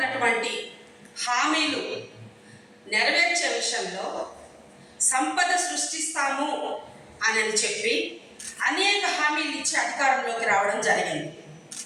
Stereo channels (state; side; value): identical; both; correlation 1.00